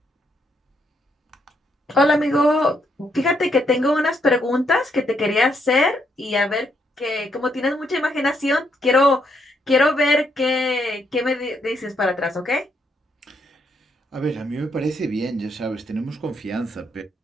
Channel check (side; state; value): both; normal; correlation 0.75